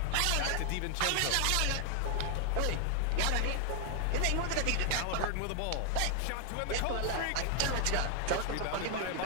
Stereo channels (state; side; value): different; both; correlation 0.00